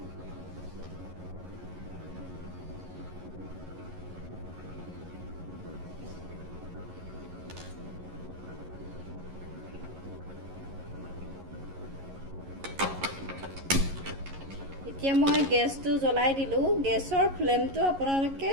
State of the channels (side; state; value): left; late; 11 ms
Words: এতিয়া মই গেছটো জ্বলাই দিলোঁ। গেছৰ ফ্লেমটো আপোনালোকে